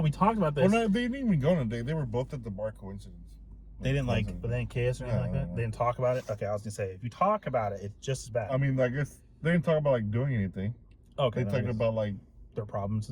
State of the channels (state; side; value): identical; both; correlation 1.00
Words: talked about this. Well, no, they didn't even go on a date. They were both at the bar. Coincidence. They didn't like, but they didn't kiss or anything like that. No. They didn't talk about it. Okay, I was gonna say, if you talk about it, it's just as bad. I mean, I guess they didn't talk about like doing anything. Okay, They talked about like their problems